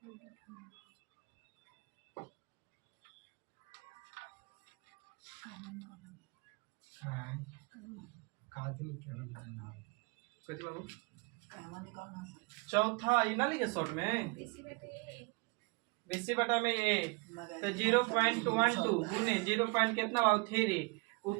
कुछ बाबू चौथा ये ना लिखे शॉर्ट में बीसी बटा में ए तो 0.12 गुने 0 पॉइंट कितना बाबू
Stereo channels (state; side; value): quieter; left; 28.2 dB